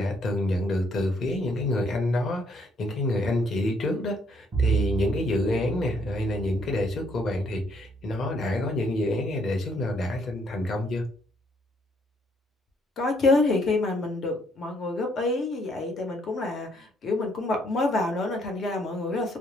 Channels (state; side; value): normal; both; correlation 0.69